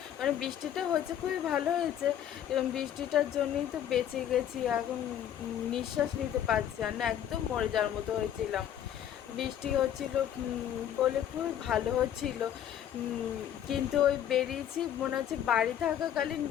মানে বৃষ্টিটা হয়েছে খুবই ভালো হয়েছে, এবং বৃষ্টিটার জন্যই তো বেঁচে গেছি। এখন নিঃশ্বাস নিতে পারছি আর না, একদম মরে যাওয়ার মতো হয়েছিলাম। বৃষ্টি হচ্ছিল বলে খুবই ভালো হচ্ছিল, কিন্তু ওই বেরিয়েছি, মনে হচ্ছে বাড়ি থাকাকালীন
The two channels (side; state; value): right; quieter; 10.2 dB